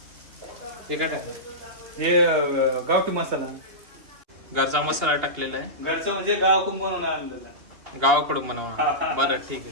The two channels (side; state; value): left; late; 2.8 ms